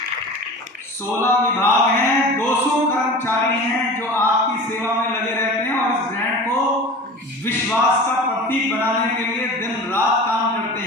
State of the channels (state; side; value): normal; both; correlation 0.36